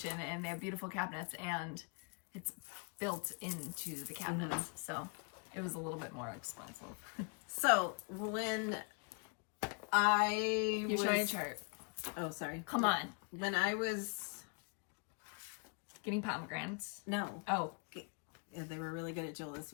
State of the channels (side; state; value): right; quieter; 36.4 dB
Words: and they have beautiful cabinets, and it's built into the cabinets. So it was a little bit more expensive. So when You're showing a chart. Oh, sorry. Come on. When I was getting pomegranates. No. Oh. Yeah, they were really good at Jewel this